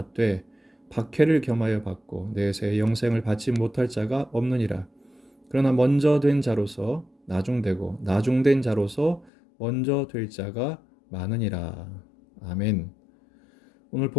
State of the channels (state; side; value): drops out; right; at 9.3 s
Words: 박해를 겸하여 받고 내세의 영생을 받지 못할 자가 없느니라. 그러나 먼저 된 자로서 나중되고 나중된 자로서 먼저 될 자가 많으니라. 아멘. 오늘